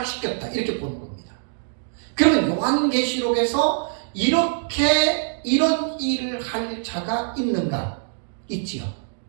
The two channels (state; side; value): silent; left; digital silence